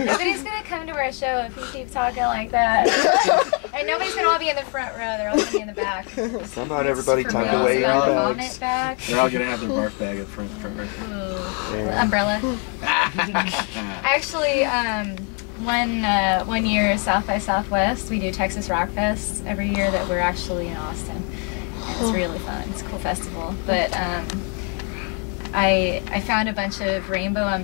gonna come to our show if you keep talking like that. And nobody's gonna all be in the front row. They're all gonna be in the back. Somehow everybody For tucked real, away in about their vomit bags. bag. They're all gonna have their barf bag in front row. Ooh. Umbrella. Actually, one year South by Southwest, we do Texas Rock Fest every year that we're actually in Austin. And it's really fun. It's a cool festival. But I found a bunch of rainbow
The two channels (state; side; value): quieter; right; 38.0 dB